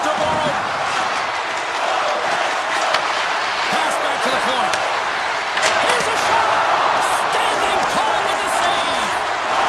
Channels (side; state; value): both; identical; correlation 1.00